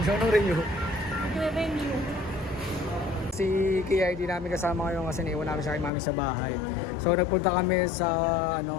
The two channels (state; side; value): drops out; right; at 5.9 s